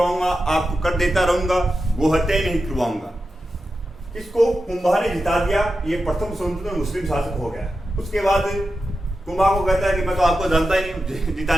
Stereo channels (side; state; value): both; normal; correlation 0.91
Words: आपको कर देता रहूंगा, गो हत्या नहीं करवाऊंगा। इसको कुंभा ने जिता दिया, ये प्रथम स्वतंत्र मुस्लिम शासक हो गया। उसके बाद कुंभा को कहता है कि मैं तो आपको जानता ही नहीं हूँ,